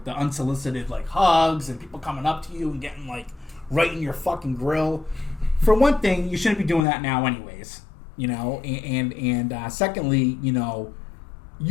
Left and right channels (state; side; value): drops out; right; at 6.8 s